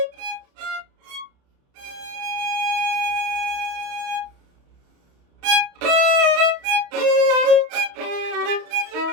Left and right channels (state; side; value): late; left; 29 ms